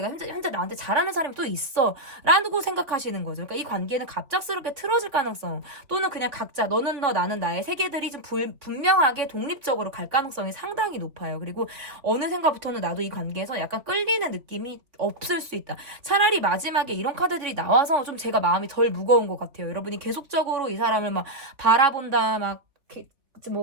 현재 나한테 잘하는 사람이 또 있어. 라고 생각하시는 거죠. 그러니까 이 관계는 갑작스럽게 틀어질 가능성, 또는 그냥 각자 너는 너 나는 나의 세계들이 좀 분명하게 독립적으로 갈 가능성이 상당히 높아요. 그리고 어느 생각부터는 나도 이 관계에서 약간 끌리는 느낌이 없을 수 있다. 차라리 마지막에 이런 카드들이 나와서 좀 제가 마음이 덜 무거운 것 같아요. 여러분이 계속적으로 이 사람을 막 바라본다, 막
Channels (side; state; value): left; late; 3.1 ms